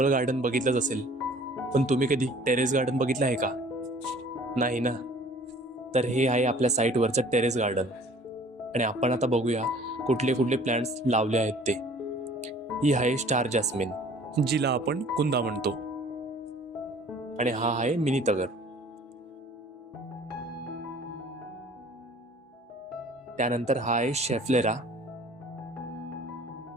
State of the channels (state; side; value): normal; both; correlation 0.51